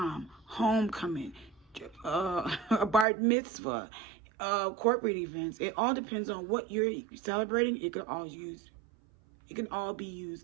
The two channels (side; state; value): left; drops out; at 3.1 s